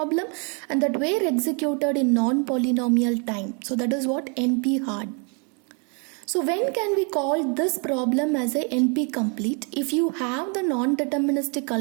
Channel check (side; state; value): left; quieter; 36.6 dB